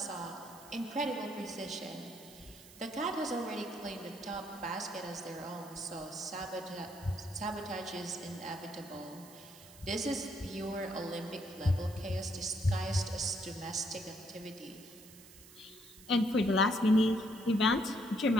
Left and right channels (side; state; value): right; noise; hiss, 19 dB below the sound